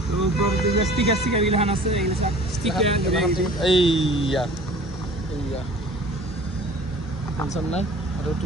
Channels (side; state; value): both; normal; correlation 0.46